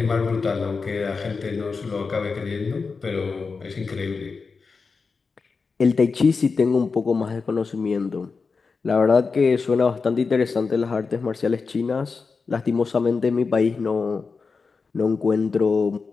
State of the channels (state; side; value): quieter; right; 4.7 dB